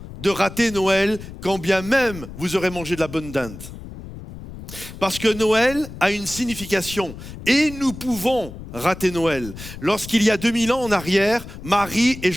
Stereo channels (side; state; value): left; noise; rumble, 13 dB below the sound